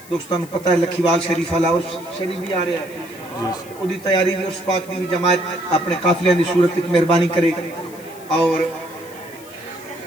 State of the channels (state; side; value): noise; left; hiss, 21 dB below the sound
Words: دوستان پتہ ہے لکھیوال شریف والا اس شریف بھی آ رہا ہے. وہ دی تیاری بھی اس پاک دی جماعت اپنے قافلے دی صورت ایک مہربانی کرے اور